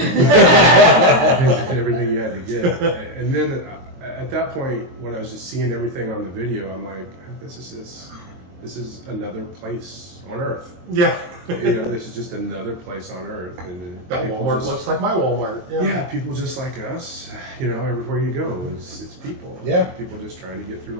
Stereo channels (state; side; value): late; left; 23 ms